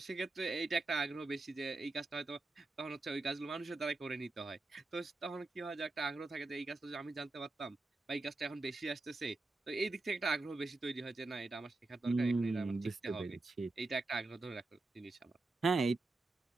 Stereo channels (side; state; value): left; quieter; 3.3 dB